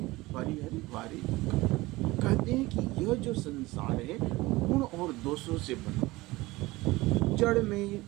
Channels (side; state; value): left; quieter; 20.4 dB